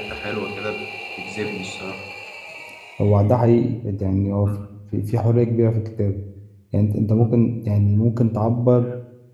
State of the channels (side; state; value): both; identical; correlation 1.00